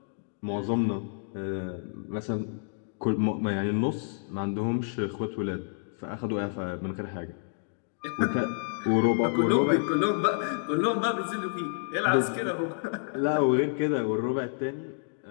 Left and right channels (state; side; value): silent; right; digital silence